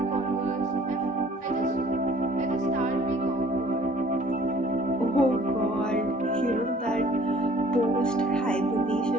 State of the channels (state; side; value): normal; both; correlation 0.54